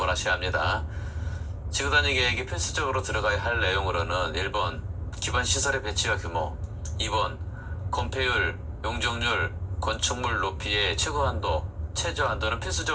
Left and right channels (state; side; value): identical; both; correlation 1.00